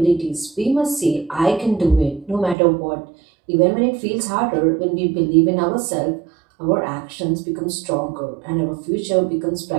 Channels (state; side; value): drops out; left; at 2.6 s